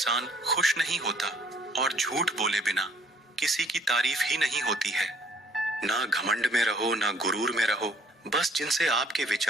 खुश नहीं होता, और झूठ बोले बिना किसी की तारीफ ही नहीं होती है। ना घमंड में रहो, ना गुरूर में रहो, बस जिनसे आपके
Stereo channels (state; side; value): normal; both; correlation 0.60